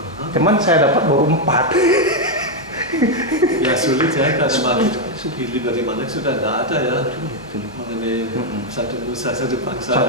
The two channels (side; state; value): both; normal; correlation 0.02